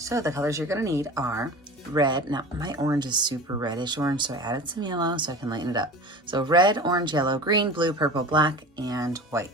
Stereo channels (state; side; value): normal; both; correlation 0.35